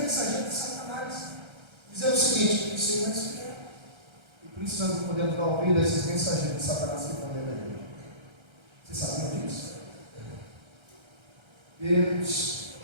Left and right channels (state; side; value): late; left; 1.3 ms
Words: de Satanás dizendo o seguinte: isso aí vai esfriar. E por isso nós não podemos dar ouvido a esses mensageiros de Satanás que estão dentro da igreja. Vocês sabiam disso? Deus